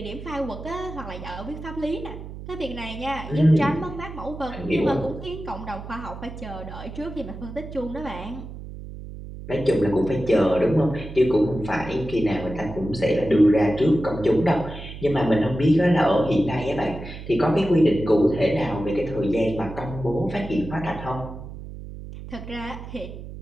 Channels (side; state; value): right; noise; hum, 12 dB below the sound